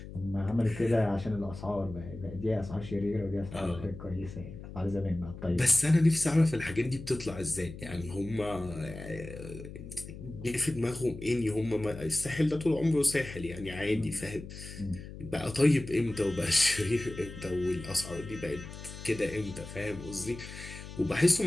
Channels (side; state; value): left; noise; hum, 12 dB below the sound